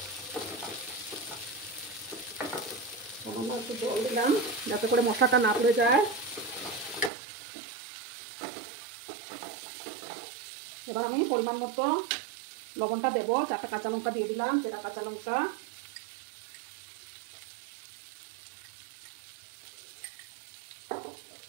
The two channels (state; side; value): drops out; left; at 7.1 s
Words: একটু জল দিলাম যাতে করে মশলাটা না পুড়ে যায়। এবার আমি পরিমাণ মতো লবণটা দেবো। 4টা কাঁচা লঙ্কা দিয়ে দিলাম, চেরা কাঁচা লঙ্কা।